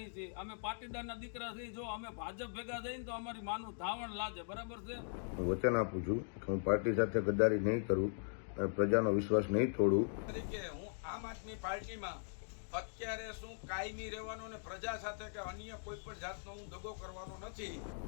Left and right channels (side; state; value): right; silent; digital silence